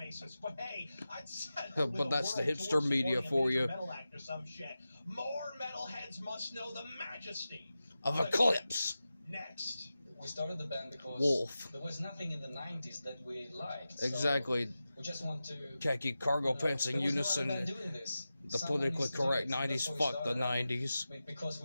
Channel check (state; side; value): inverted; both; correlation -0.93